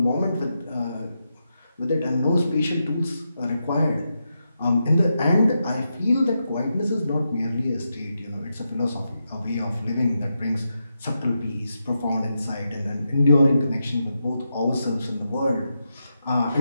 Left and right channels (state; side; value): inverted; both; correlation -0.86